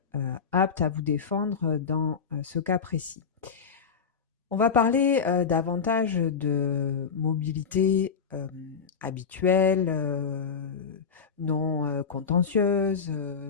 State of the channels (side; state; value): right; quieter; 6.2 dB